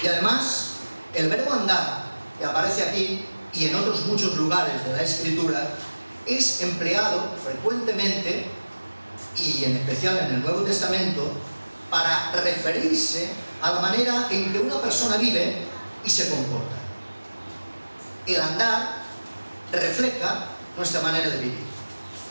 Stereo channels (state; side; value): inverted; both; correlation -1.00